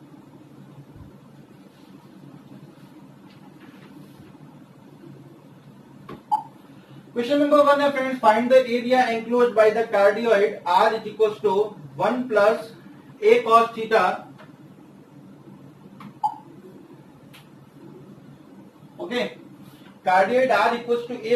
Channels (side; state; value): both; identical; correlation 1.00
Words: क्वेश्चन नंबर 1 है friends, find the area enclosed by the cardioid R is equal to 1 plus a cos theta. Okay, cardioid R equal to